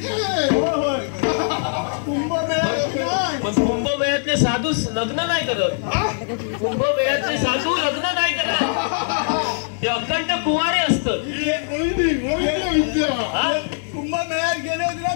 पण कुंभमेळ्यातले साधू लग्न नाही करत. कुंभमेळ्यातले साधू लग्न नाही करत ते अखंड कुवारे असतात. कुंभमेळ्यात गेले होते ना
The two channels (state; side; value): silent; right; digital silence